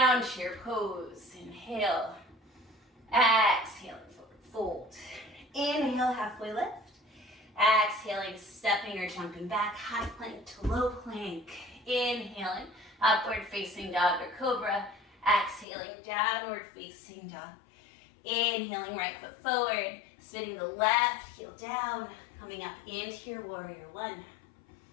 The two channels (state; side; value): drops out; right; at 15.7 s